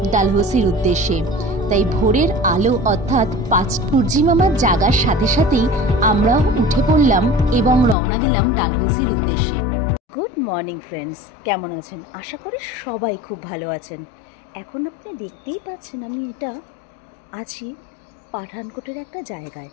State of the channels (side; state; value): right; drops out; at 8.0 s